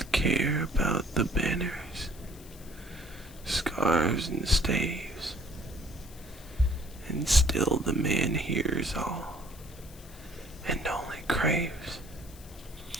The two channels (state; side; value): noise; left; hiss, 21 dB below the sound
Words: care about the banners, scarves and staves, and still the man hears all, and only craves